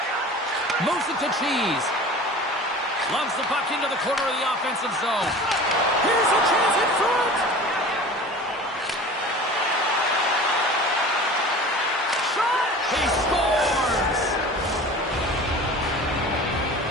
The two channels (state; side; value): normal; both; correlation 0.39